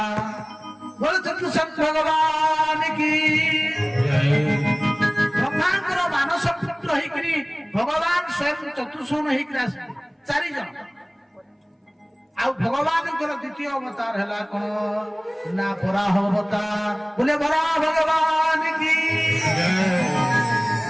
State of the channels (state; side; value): identical; both; correlation 1.00